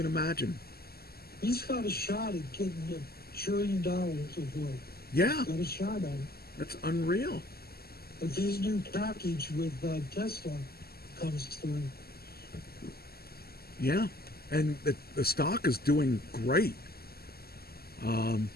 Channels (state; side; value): late; right; 0.45 ms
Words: imagine. He's got a shot at getting $1 trillion of wealth. Yeah, he's got a shot at it. That's unreal. If his new package with Tesla comes through. Yeah, and the stock is doing great. I'm